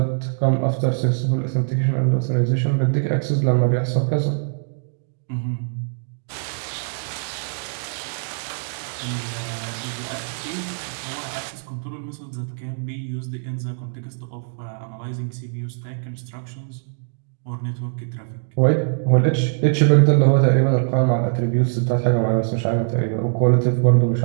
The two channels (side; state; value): left; silent; digital silence